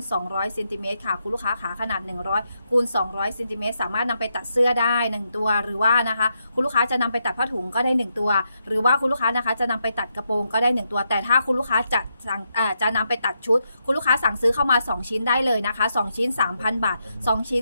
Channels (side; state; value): both; inverted; correlation -0.82